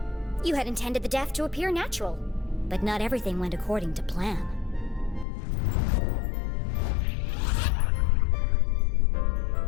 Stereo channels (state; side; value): drops out; right; at 5.2 s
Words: You had intended the death to appear natural, but not everything went according to plan.